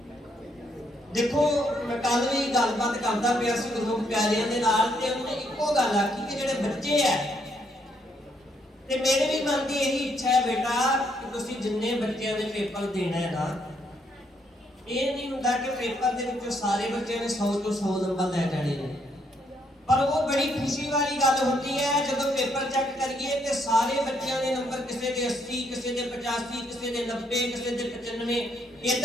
देखो मैं कल भी गलबात करता पिया सी गुरमुख प्यारियां दे नाल ते उन्होंने इक्को गल आखी कि जिहड़े बच्चे है ते मेरे भी मन की यही इच्छा है बेटा कि तुसीं जिन्ने बच्चों दे पेपर देना है ना, ये नहीं हुंदा कि पेपर दे विचों सारे बच्चों ने 100 ਤੋਂ 100 नंबर लै जाने ने, पर वो बड़ी खुशी वाली गल होती है जब पेपर चेक करिए ते सारे बच्चों के नंबर किसी के 80, किसी के 85, किसी के 90, किसी के 95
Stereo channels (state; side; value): normal; both; correlation 0.73